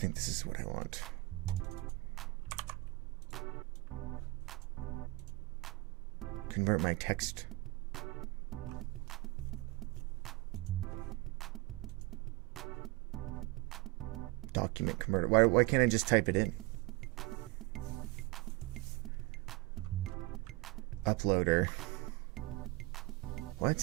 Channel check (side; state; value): left; quieter; 22.5 dB